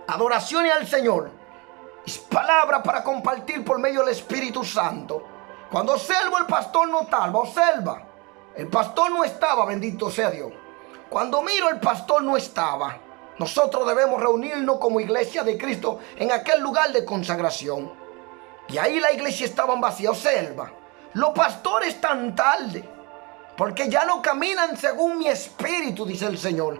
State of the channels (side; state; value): left; quieter; 27.9 dB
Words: adoraciones al Señor, es palabra para compartir por medio del Espíritu Santo. Cuando observo, el pastor no estaba, observa, el pastor no estaba, bendito sea Dios. Cuando miro, el pastor no estaba. Nosotros debemos reunirnos como iglesia de Cristo en aquel lugar de consagración. Y ahí la iglesia estaba vacía. Observa, los pastores están tarde, porque ya no caminan según mi espíritu, dice el Señor.